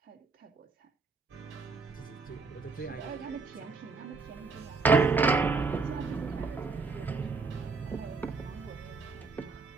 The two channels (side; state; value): left; quieter; 4.3 dB